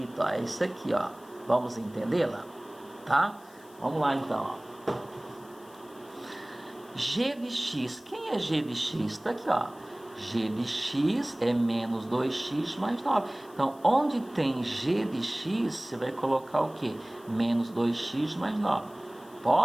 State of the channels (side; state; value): left; noise; hiss, 26 dB below the sound